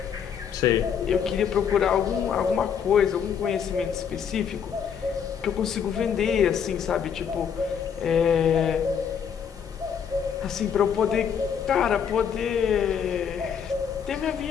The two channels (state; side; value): quieter; right; 7.6 dB